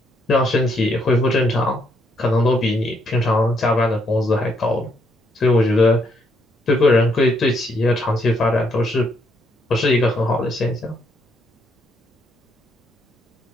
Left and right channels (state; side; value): normal; both; correlation 0.73